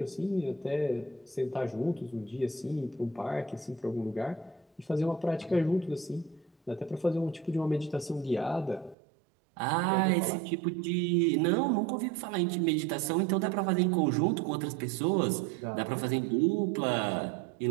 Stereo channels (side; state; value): left; drops out; at 9.0 s